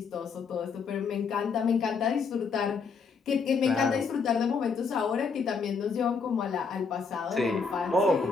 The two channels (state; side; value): quieter; right; 5.2 dB